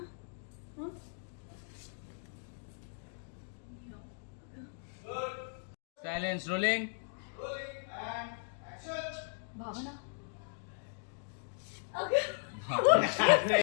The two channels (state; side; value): silent; right; digital silence